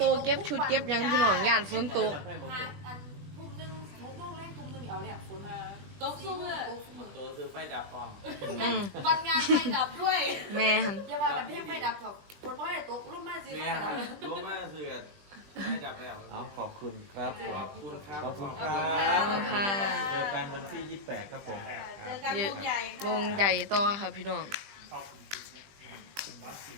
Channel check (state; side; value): late; left; 20 ms